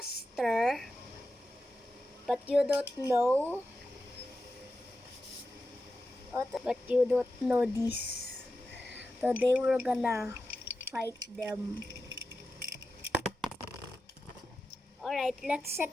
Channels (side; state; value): both; normal; correlation 0.91